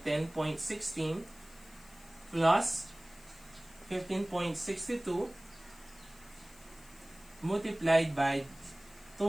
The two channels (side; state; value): left; noise; hiss, 23 dB below the sound